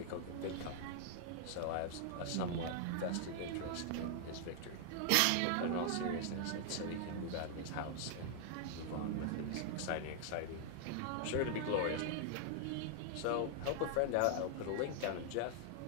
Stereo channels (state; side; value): different; both; correlation 0.00